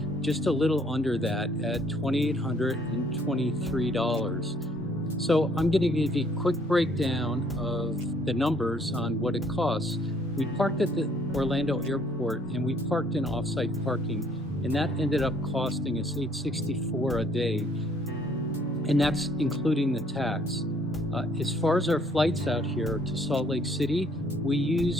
just a little under that at $2,823. So I'm going to give you a quick breakdown of the numbers on what it costs. We parked at the Orlando airport and we parked in off-site parking, and that ended up costing us $864 a day, and that's including the tax. As far as our flights out here to Salt Lake City, we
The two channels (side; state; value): both; normal; correlation 0.64